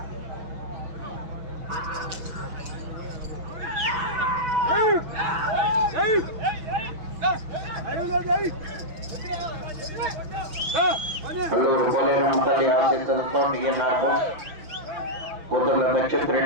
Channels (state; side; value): late; left; 6.0 ms